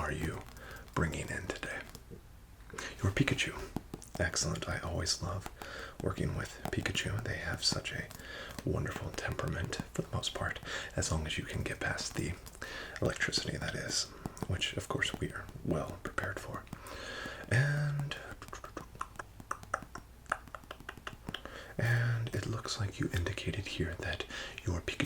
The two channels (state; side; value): identical; both; correlation 1.00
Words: you bringing in today? Your Pikachu. Excellent. I always love working with Pikachu. They have such a wonderful temperament for the most part, as long as you can get past the electricity, that is, which of course we are well prepared for. And it looks like you indicated here that your